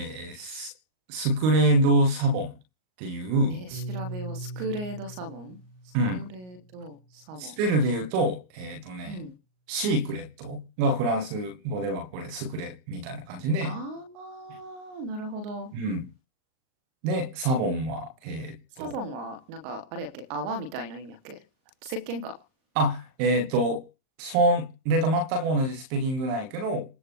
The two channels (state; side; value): late; left; 38 ms